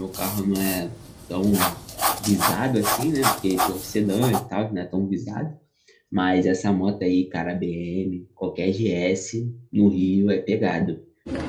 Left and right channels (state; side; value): identical; both; correlation 1.00